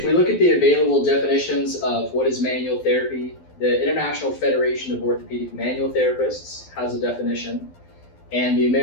we look at the available definitions of what is manual therapy, the International Federation of Orthopedic Manual Therapists has a definition, and the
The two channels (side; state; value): right; late; 12 ms